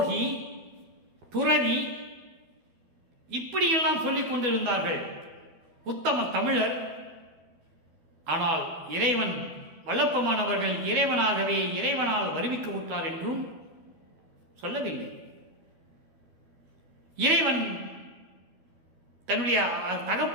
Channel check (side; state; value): left; late; 12 ms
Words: துறவி, இப்படியெல்லாம் சொல்லிக் கொண்டிருந்தார்கள். உத்தம தமிழர். ஆனால் இறைவன் வல்லப்பெருமானவர்கள் இறைவனாகவே இறைவனால் வருவிக்க உற்றார் என்றும் சொல்லவில்லை. இறைவன் தன்னுடைய